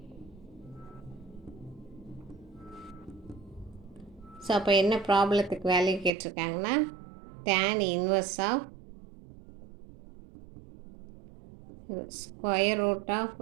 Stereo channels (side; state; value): left; drops out; at 6.2 s